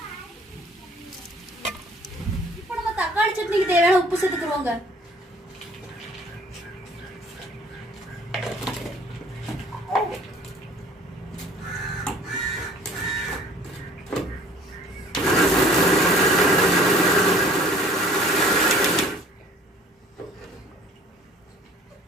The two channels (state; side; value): normal; both; correlation 0.52